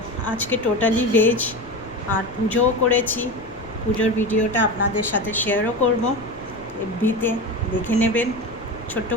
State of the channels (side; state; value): left; noise; rumble, 21 dB below the sound